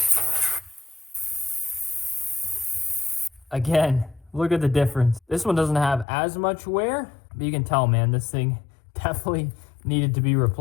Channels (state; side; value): drops out; right; at 6.1 s